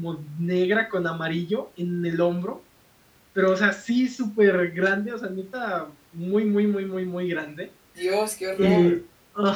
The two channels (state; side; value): identical; both; correlation 1.00